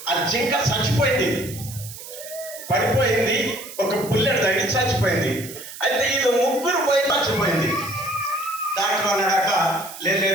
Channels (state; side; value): noise; right; hiss, 13 dB below the sound